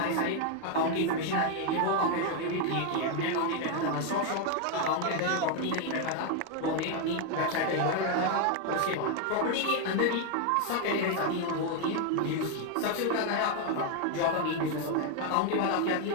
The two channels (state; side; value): different; both; correlation 0.01